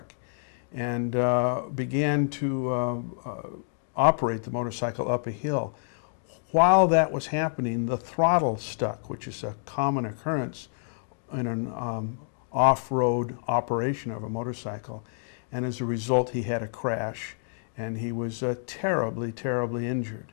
and began to operate the motorcycle up a hill. While that was happening, the throttle stuck, which is a common occurrence in an off-road operation of a motorcycle, and as a result he had a crash and he was terribly, terribly injured.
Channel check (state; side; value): silent; right; digital silence